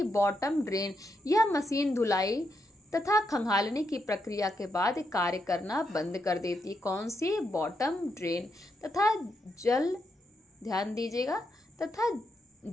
बॉटम ड्रेन। यह मशीन धुलाई तथा खंगालने की प्रक्रिया के बाद कार्य करना बंद कर देती है। कौन सी? Bottom drain. तथा जल, ध्यान दीजिएगा, तथा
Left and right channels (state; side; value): normal; both; correlation 0.81